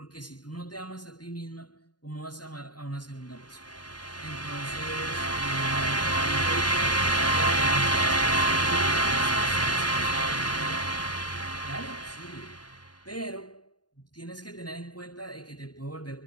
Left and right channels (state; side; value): late; right; 0.70 ms